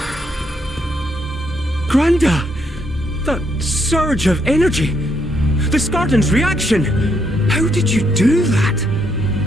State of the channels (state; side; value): normal; both; correlation 0.75